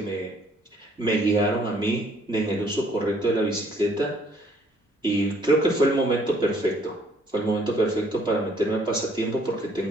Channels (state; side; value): normal; both; correlation 0.63